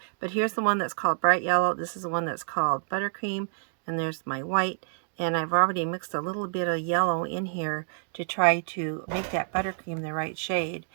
But here's the one that's called bright yellow. This is the one that's called buttercream. And there's my white. And I've already mixed a little bit of yellow in here to try to make that buttercream the right shade.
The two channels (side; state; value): left; silent; digital silence